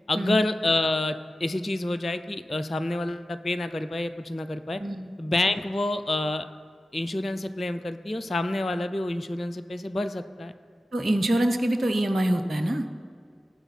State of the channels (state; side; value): normal; both; correlation 0.94